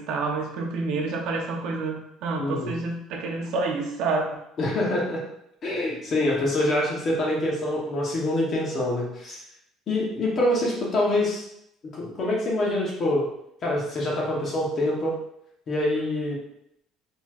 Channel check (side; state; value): both; normal; correlation 0.63